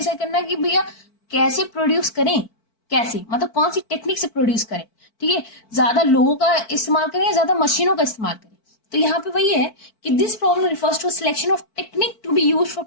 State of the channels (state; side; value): late; right; 4.5 ms